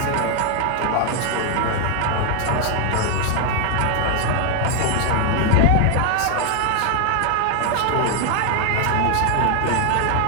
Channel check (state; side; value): different; both; correlation 0.00